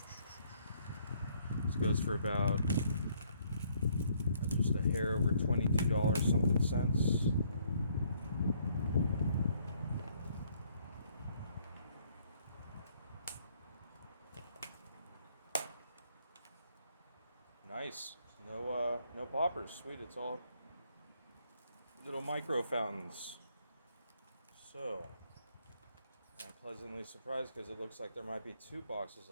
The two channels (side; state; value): both; inverted; correlation -0.67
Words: this goes for about just a hair over $22 something cents. Nice. No poppers. Sweet. It's all little micro fountains. So, I'm pleasantly surprised because it looks like there might be 2 boxes